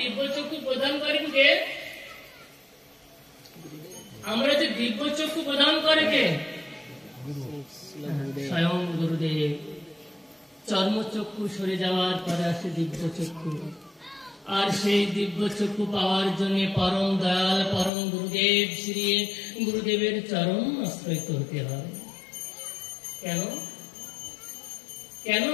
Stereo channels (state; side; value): drops out; right; at 17.9 s